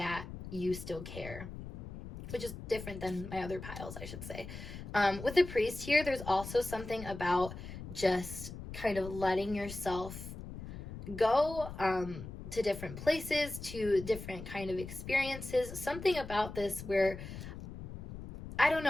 you still care. which is different than my other piles, I should say. With the priest here, there's also something about just kind of letting yourself go to different places, to different kind of experiences. Something about this where, I don't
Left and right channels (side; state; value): left; noise; rumble, 10 dB below the sound